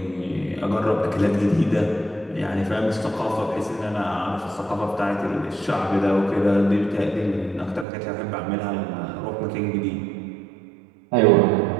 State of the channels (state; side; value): drops out; left; at 7.9 s